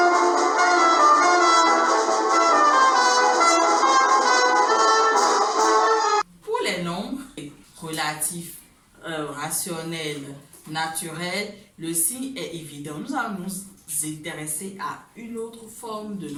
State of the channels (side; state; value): both; identical; correlation 1.00